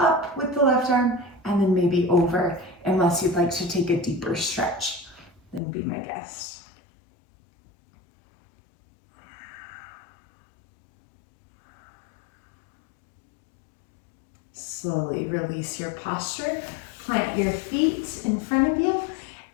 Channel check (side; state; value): right; drops out; at 5.6 s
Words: with the left arm, and then maybe over, unless you'd like to take a deeper stretch. Then be my guest. Slowly release your posture, plant your feet in front of you,